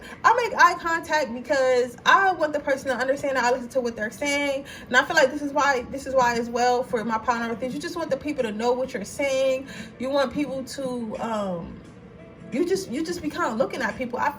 I make eye contact because I want the person to understand that I listen to what they're saying. And I feel like this is why as well, for my partner with things, you just want the people to know what you're saying. You want people to you just be kind of looking at people. I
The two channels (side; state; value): both; identical; correlation 1.00